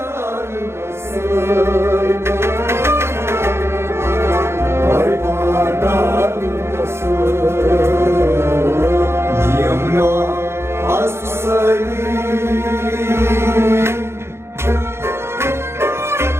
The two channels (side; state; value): left; late; 0.12 ms